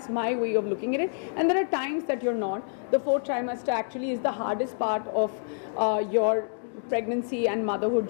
my way of looking at it. And there are times that you're not. The fourth trimester actually is the hardest part of your pregnancy and motherhood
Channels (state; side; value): silent; right; digital silence